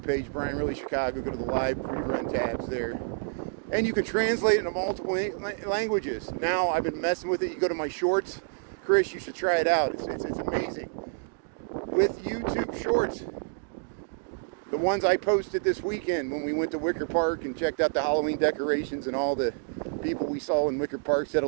page, Brian Really Chicago, go to the live rerun tabs there. And you can translate it into multiple languages. Now I've been messing with it. You go to my shorts. Chris, you should try it out. It's amazing. With YouTube shorts. The ones I posted this weekend when we went to Wicker Park and checked out the Halloween decorations and all the people we saw in Wicker Park said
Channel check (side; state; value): left; silent; digital silence